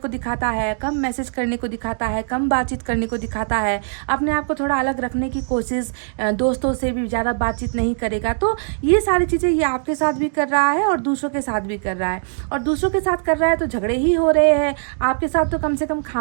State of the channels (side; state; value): left; silent; digital silence